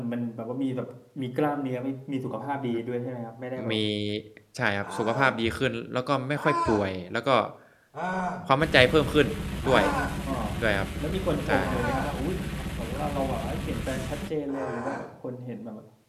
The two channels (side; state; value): both; identical; correlation 1.00